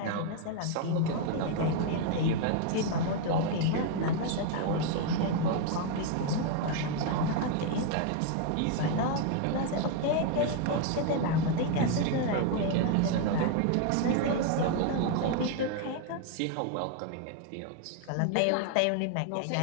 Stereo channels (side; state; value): both; different; correlation 0.01